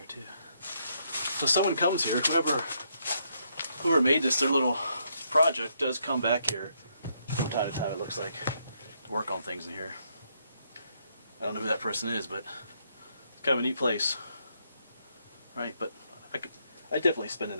too. So someone comes here, whoever made this, their little project, does come back here from time to time, it looks like, to work on things in here. I don't know who that person is, but it's kind of a neat place. Right, but I'd definitely spend the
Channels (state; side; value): inverted; both; correlation -0.74